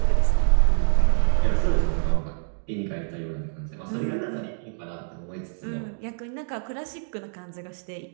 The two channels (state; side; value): silent; left; digital silence